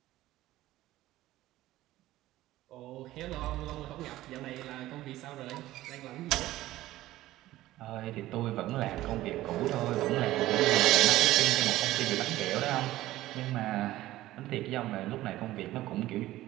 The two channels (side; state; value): left; quieter; 15.8 dB